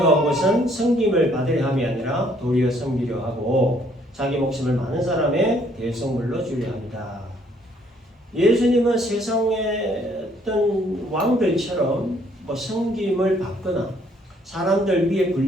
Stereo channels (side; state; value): both; normal; correlation 0.65